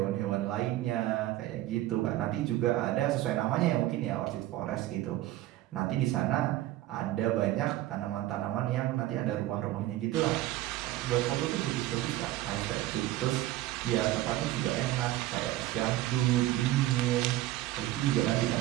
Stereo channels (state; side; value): quieter; left; 15.4 dB